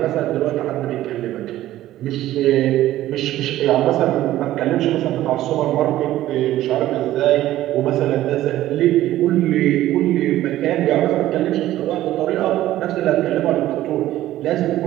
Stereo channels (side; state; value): left; quieter; 14.4 dB